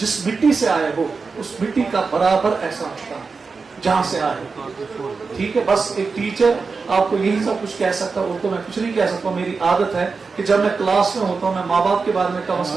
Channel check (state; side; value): quieter; left; 4.7 dB